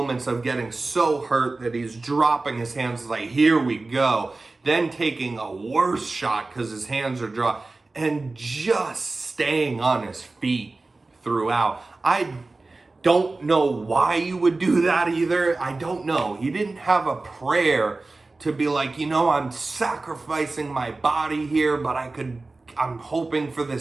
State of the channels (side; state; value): left; quieter; 3.4 dB